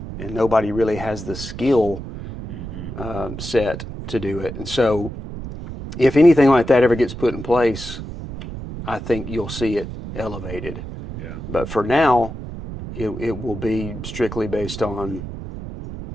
and nobody really has the skill set to do it. And so, if anything like that ever gets put in place, I think you'll see it elevated. Yeah. But for now, it will be strictly based on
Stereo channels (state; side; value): noise; right; rumble, 9 dB below the sound